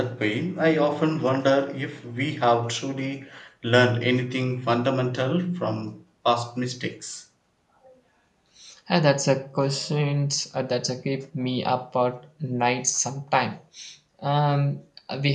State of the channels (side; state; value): both; identical; correlation 1.00